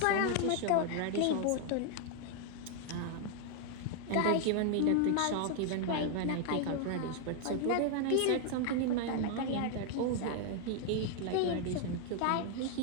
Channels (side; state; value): both; different; correlation 0.00